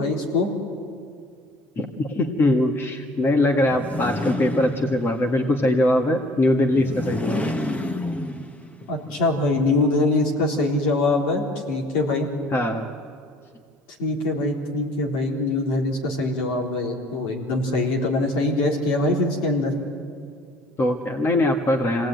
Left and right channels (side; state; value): both; normal; correlation 0.54